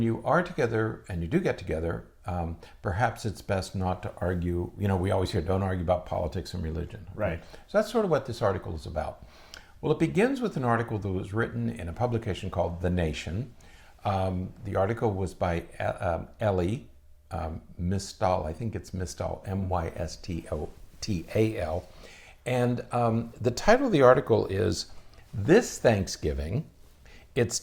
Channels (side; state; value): both; identical; correlation 1.00